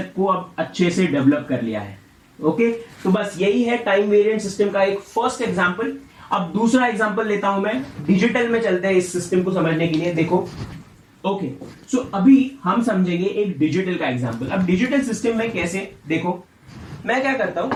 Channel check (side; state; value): both; identical; correlation 1.00